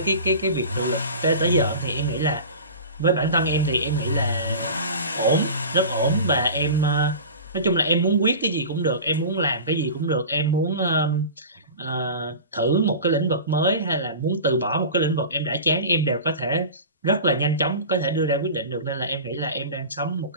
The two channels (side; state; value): both; inverted; correlation -0.35